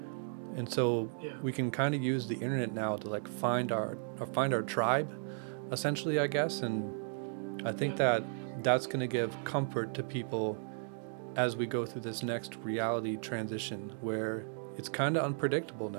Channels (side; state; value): left; silent; digital silence